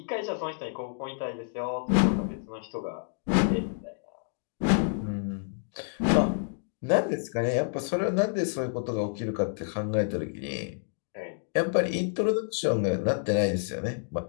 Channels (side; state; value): right; silent; digital silence